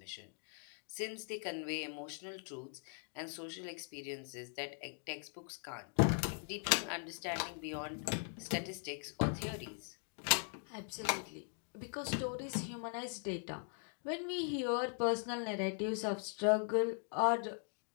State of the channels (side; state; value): right; silent; 51 dB below the other